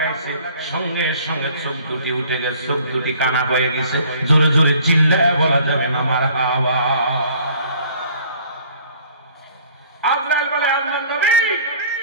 সঙ্গে সঙ্গে চোখ দুটি উঠে গেছে, চোখ দুটি কানা হয়ে গেছে। জোরে জোরে চিল্লায় বলা যাবে না মারহাবা। আজরাইল বলে, আল্লাহর নবী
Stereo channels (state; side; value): inverted; both; correlation -0.54